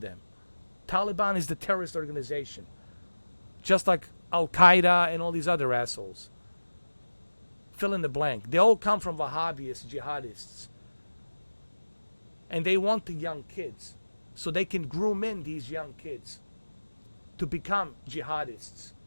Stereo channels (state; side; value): inverted; both; correlation -1.00